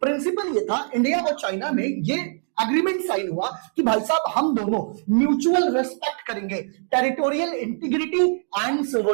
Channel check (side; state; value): left; silent; 63 dB below the other